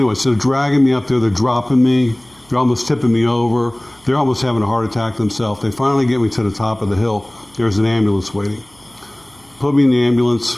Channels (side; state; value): right; noise; hum, 29 dB below the sound